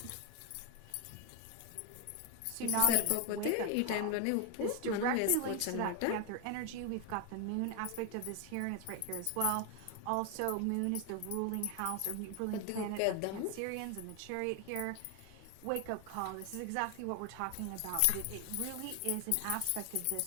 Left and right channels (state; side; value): different; both; correlation 0.01